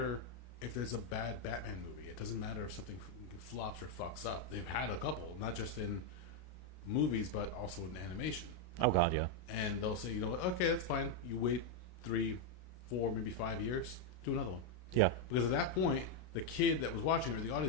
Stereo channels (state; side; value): late; right; 33 ms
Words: if there's a bad Batman movie. It doesn't matter if something flops or fucks up. They've had a couple, not just in movies, but also in animation. Oh, God, yeah. And they'll say, you know what, okay, that's fine. You wait 3, 4, maybe 5 years, do another one. Yeah. Because at that point, the kid that was watching or the